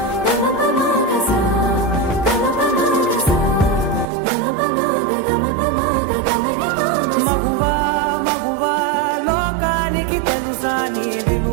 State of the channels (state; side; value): drops out; left; at 4.0 s